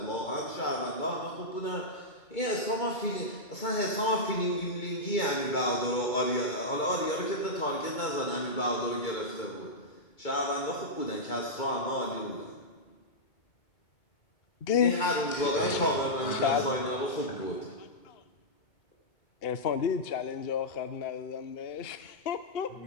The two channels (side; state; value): right; late; 2.2 ms